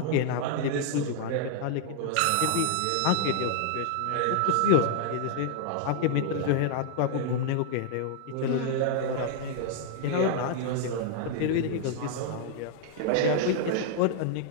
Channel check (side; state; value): both; different; correlation -0.01